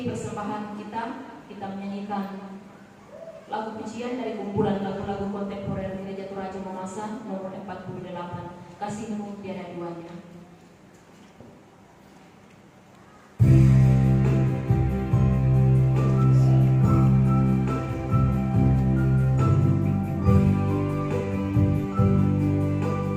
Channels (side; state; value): both; identical; correlation 1.00